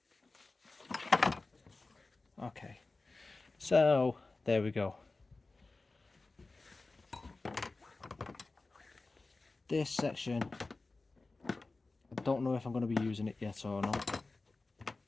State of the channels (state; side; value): quieter; right; 3.5 dB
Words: Okay, so there we go. This section, I don't know if I'm going to be using it yet or not.